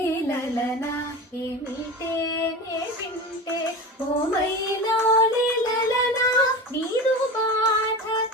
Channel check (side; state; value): both; normal; correlation 0.29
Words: లలనా ఏమిటే నే వింటే ఓ మైలౌలి లలనా నీదు బాధ